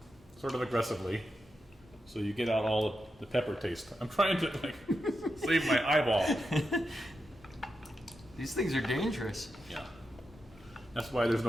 sort of aggressively so you get out all of the pepper taste. I'm trying to like save my eyeball. These things are dangerous. Yeah. That's why there's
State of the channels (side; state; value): both; normal; correlation 0.87